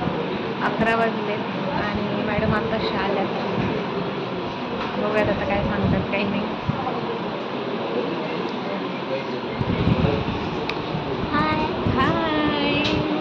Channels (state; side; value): identical; both; correlation 1.00